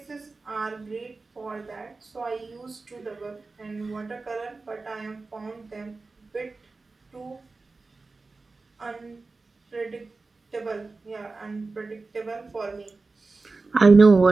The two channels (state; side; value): quieter; left; 3.8 dB